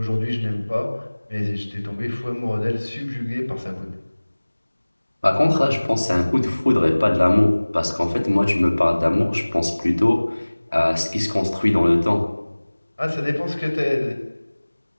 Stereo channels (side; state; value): both; inverted; correlation -1.00